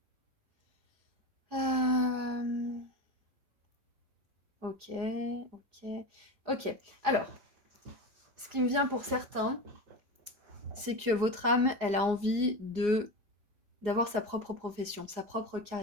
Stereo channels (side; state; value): left; late; 4.8 ms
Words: euh... Ok, ok, ok. Alors, ce qui me vient pour certains, c'est que votre âme, elle a envie d'avoir sa propre profession, sa propre